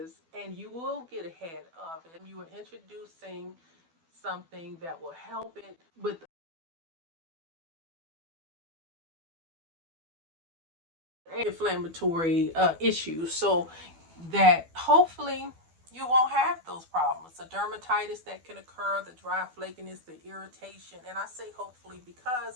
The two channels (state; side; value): late; left; 12 ms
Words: and you will get ahead of it. You are introducing something that will help it with inflammatory issues so that hopefully you won't have those problems. The dermatitis that can occur, the dry flakiness, the irritation. And I say hopefully